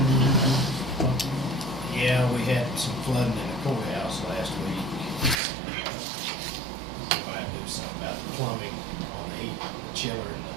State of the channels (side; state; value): left; drops out; at 5.4 s